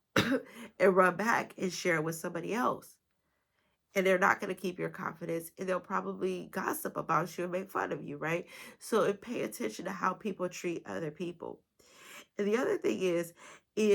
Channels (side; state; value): both; identical; correlation 1.00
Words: and run back and share it with somebody else. And they're not going to keep your confidence and they'll probably gossip about you and make fun of you, right? So pay attention to how people treat other people. And the other thing